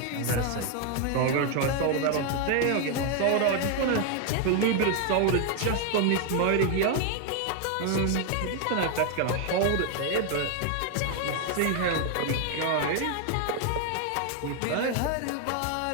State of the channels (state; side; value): different; both; correlation 0.01